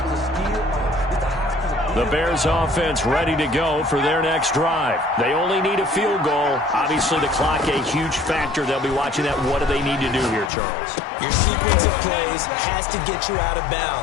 The Bears offense ready to go for their next drive. They only need a field goal. Obviously, the clock a huge factor. They'll be watching that. What do they need to do here, Charles? Your sequence of plays has to get you out of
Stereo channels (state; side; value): drops out; right; at 10.5 s